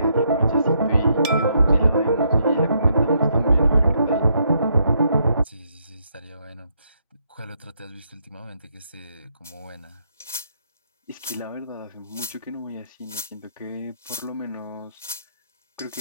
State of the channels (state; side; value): inverted; both; correlation -0.75